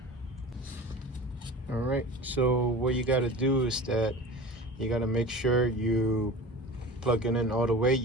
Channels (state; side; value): normal; both; correlation 0.35